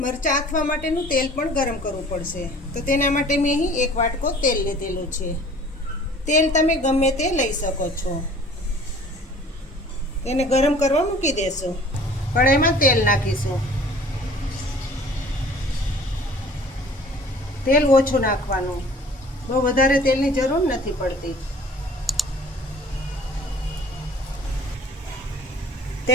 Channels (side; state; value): both; normal; correlation 0.49